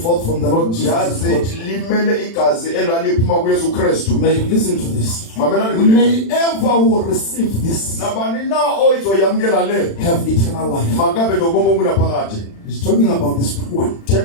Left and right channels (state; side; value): late; right; 36 ms